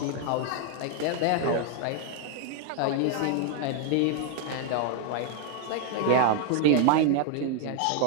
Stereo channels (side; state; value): both; different; correlation 0.00